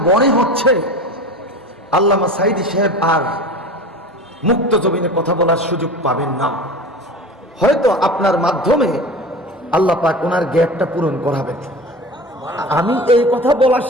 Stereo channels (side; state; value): both; normal; correlation 0.33